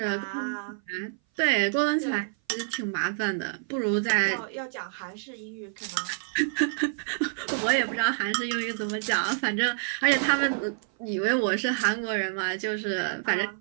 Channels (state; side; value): silent; left; 57 dB below the other